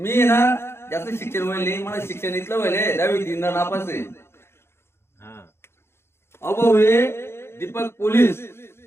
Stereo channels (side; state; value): right; late; 0.12 ms